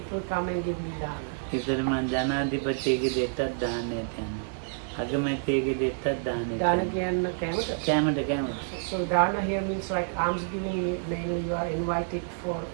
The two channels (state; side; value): silent; left; digital silence